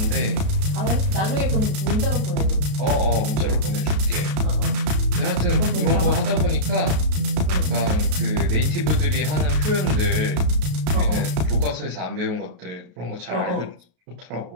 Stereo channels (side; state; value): left; late; 33 ms